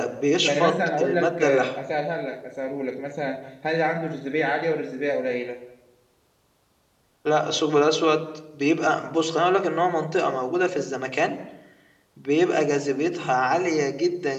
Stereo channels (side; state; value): both; identical; correlation 1.00